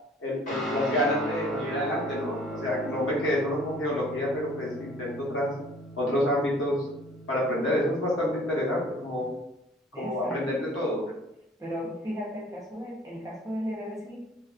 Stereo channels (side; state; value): both; normal; correlation 0.53